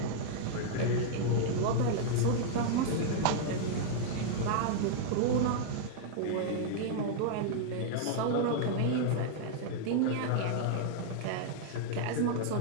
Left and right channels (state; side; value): different; both; correlation -0.01